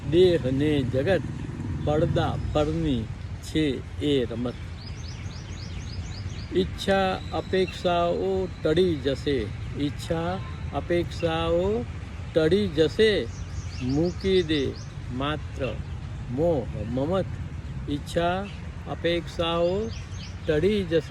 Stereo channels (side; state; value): both; identical; correlation 1.00